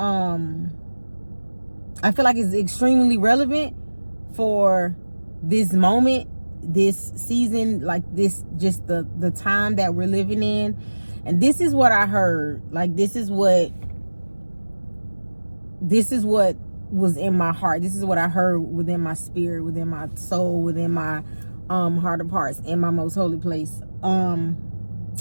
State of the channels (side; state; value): both; inverted; correlation -1.00